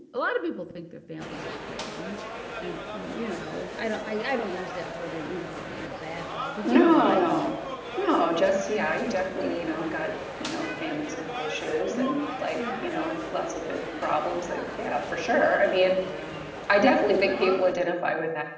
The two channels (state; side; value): identical; both; correlation 1.00